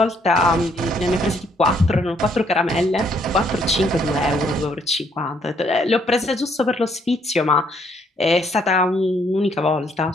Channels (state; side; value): normal; both; correlation 0.68